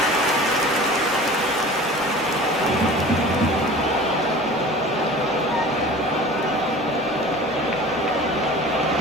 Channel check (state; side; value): normal; both; correlation 0.40